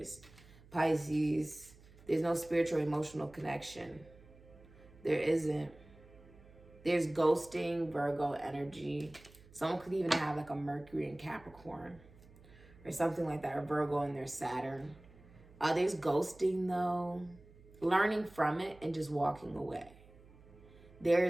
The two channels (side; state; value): right; noise; hum, 23 dB below the sound